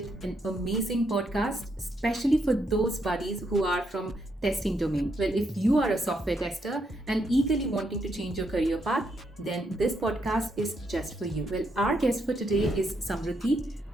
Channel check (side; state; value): both; normal; correlation 0.78